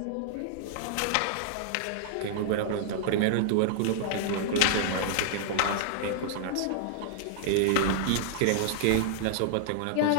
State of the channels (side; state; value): both; different; correlation -0.01